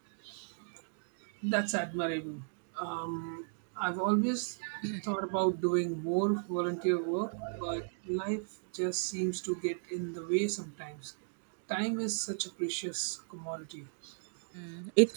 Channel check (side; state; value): left; silent; digital silence